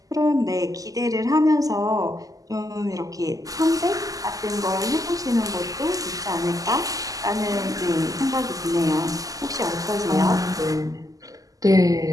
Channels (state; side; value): late; left; 0.17 ms